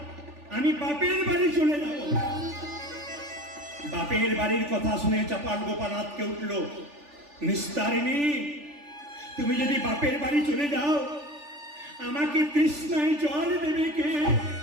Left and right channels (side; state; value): left; late; 3.4 ms